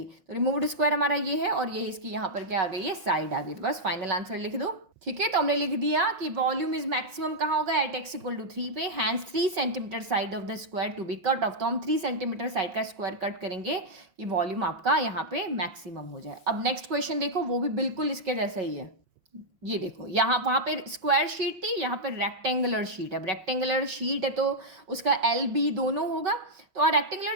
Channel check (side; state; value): left; late; 5.3 ms